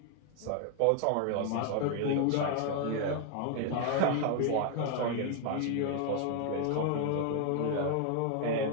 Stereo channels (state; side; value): different; both; correlation 0.00